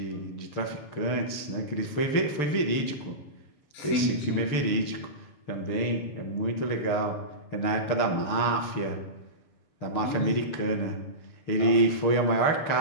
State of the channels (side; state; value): right; late; 6.6 ms